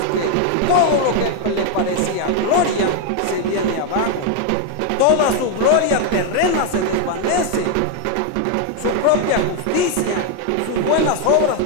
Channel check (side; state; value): both; different; correlation 0.01